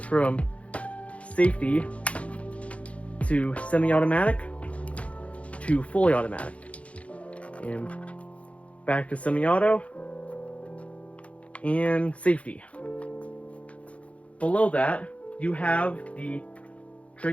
from safety to semi-automatic to fully automatic. And back to semi-auto and safety. Below that, you have the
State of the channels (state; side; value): late; right; 0.064 ms